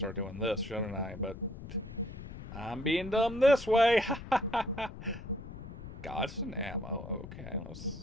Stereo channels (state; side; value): noise; left; rumble, 12 dB below the sound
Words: doing this, shouldn't I? But I'm being dumb this way. Gods and ammo. Okay,